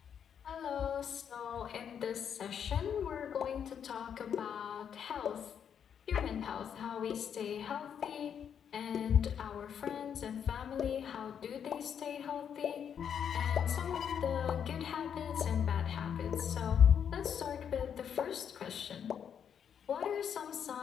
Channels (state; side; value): quieter; right; 8.1 dB